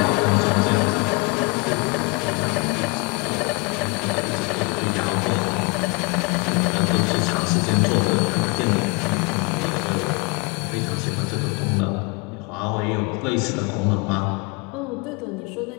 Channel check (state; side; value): quieter; right; 29.6 dB